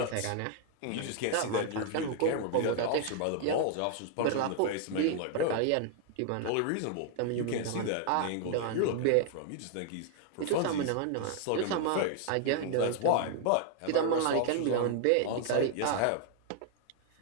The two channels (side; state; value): both; different; correlation 0.00